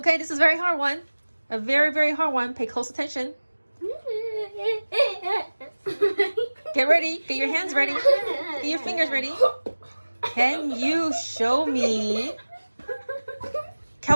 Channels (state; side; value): inverted; both; correlation -1.00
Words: this is a very hard one. A very, very hard one. Pay close attention. Get ready. Get your hands ready. Get your fingers ready. Can you show me